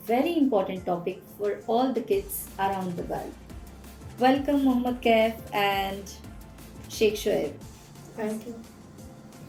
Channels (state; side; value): identical; both; correlation 1.00